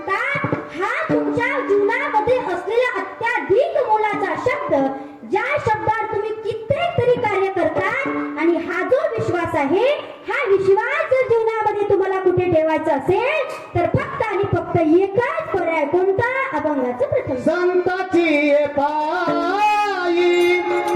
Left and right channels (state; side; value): identical; both; correlation 1.00